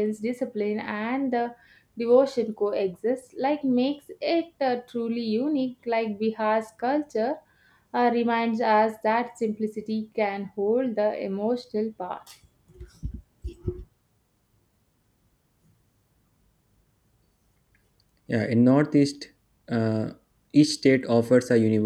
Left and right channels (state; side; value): identical; both; correlation 1.00